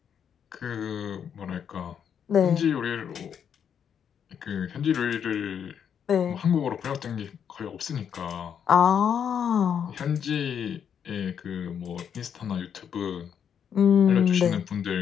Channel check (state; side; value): quieter; right; 8.0 dB